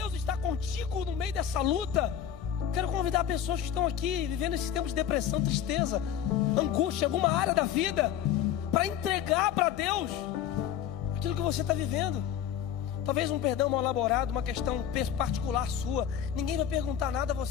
está contigo no meio dessa luta. Quero convidar pessoas que estão aqui vivendo esses tempos de depressão, tristeza, angústia, alguma área da vida, para entregar para Deus aquilo que você está vivendo. Talvez um perdão mal elaborado, uma questão particular sua. Ninguém vai perguntar nada a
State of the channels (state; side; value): quieter; right; 9.9 dB